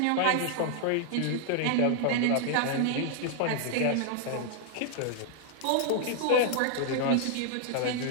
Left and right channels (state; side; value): different; both; correlation -0.01